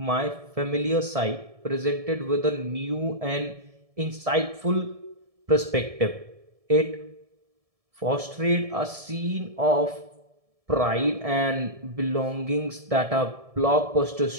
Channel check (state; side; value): late; left; 1.7 ms